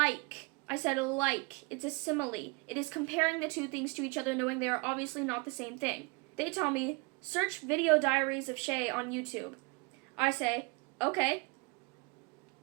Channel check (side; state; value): left; quieter; 29.2 dB